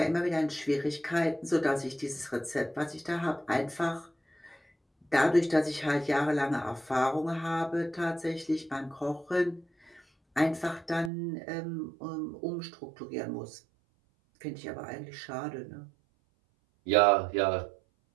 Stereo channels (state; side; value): drops out; left; at 11.1 s